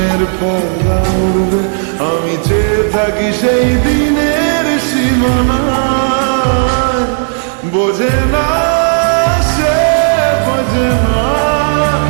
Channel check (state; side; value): silent; left; 68 dB below the other